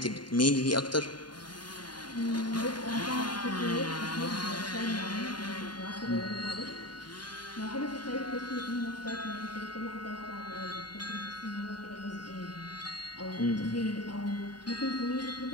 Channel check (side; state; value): right; late; 0.71 ms